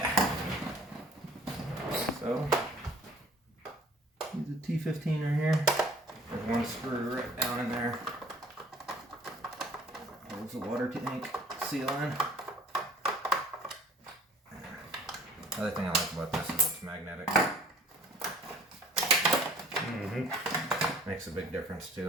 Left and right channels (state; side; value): normal; both; correlation 0.52